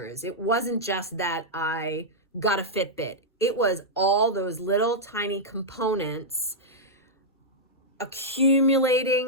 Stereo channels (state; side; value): normal; both; correlation -0.07